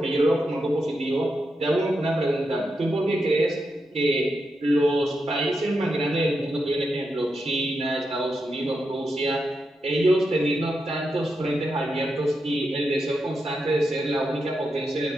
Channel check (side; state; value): both; normal; correlation 0.86